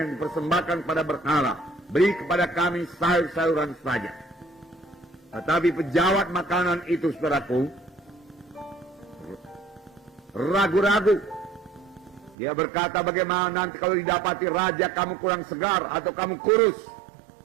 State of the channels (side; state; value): left; drops out; at 12.4 s